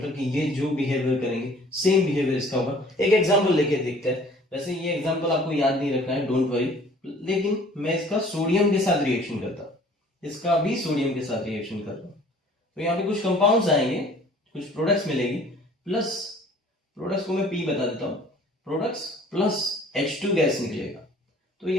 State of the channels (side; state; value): both; normal; correlation 0.52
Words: कि ये जो बिहेवियर करेंगे सेम बिहेवियर इसका होगा। एक एग्जांपल लेके देखते हैं। वैसे ये एग्जांपल आपको याद नहीं रखना है, डोंट वरी, लेकिन मैं इसका सोडियम के साथ रिएक्शन करता हूँ, इसका भी सोडियम के साथ रिएक्शन कर रहा हूँ, तो यहाँ पे कुछ कंपाउंड्स आएंगे, कुछ प्रोडक्ट्स मिलेगी, प्लस प्रोडक्ट्स को मैं P बता देता हूँ, प्रोडक्ट्स प्लस H2 गैस निकलेगा, तो